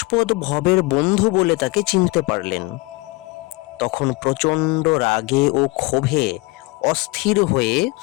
ভবের বন্ধু বলে তাকে চিনতে পারলেন। তখন প্রচণ্ড রাগে ও ক্ষোভে অস্থির হয়ে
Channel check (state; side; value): quieter; right; 24.6 dB